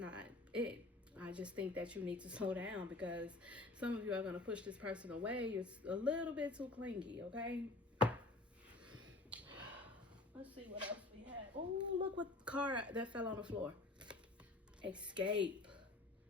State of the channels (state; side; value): quieter; right; 3.2 dB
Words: it. I just think that you need to slow down, because some of you are going to push this person away. You're a little bit too clingy, okay? Let's see what else we have. Oh, look what car that fell on the floor. Escape.